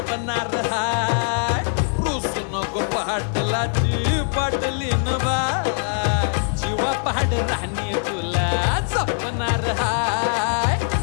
हाय रुसू नको पाटलाची पाटलीन बाय जीवा पहाड राणी तुला जपणार हाय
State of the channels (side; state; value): right; silent; 60 dB below the other